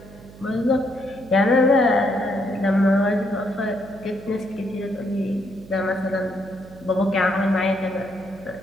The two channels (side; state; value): right; noise; hum, 20 dB below the sound